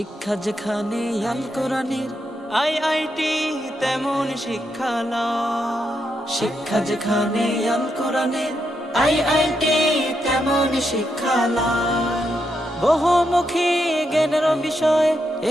যেখানে আল কোরআনের আইআইটি তেমন শিক্ষালয়, শিক্ষা যেখানে আল কোরআনের আইআইটি তেমন শিক্ষালয়। বহুমুখী জ্ঞানের বিষয়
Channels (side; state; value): both; normal; correlation 0.82